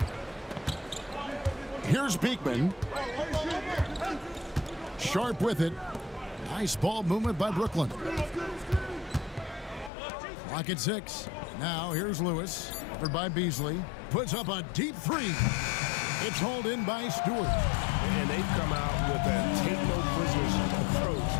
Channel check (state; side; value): drops out; right; at 9.9 s